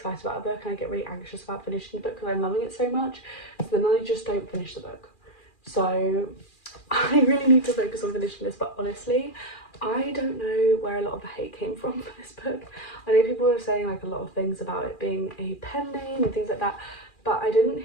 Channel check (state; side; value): late; right; 2.4 ms